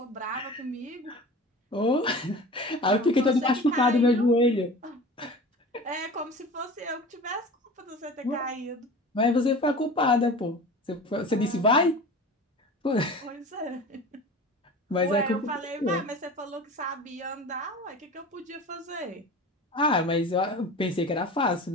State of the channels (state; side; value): normal; both; correlation 0.36